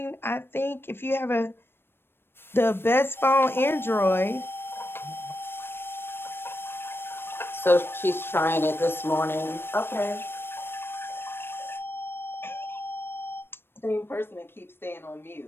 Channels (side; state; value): right; late; 0.11 ms